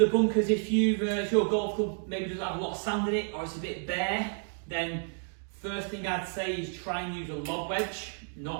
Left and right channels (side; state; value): left; silent; 56 dB below the other